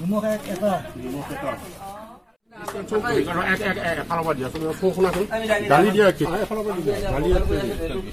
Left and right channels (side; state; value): both; identical; correlation 1.00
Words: দালি দিয়া চেনি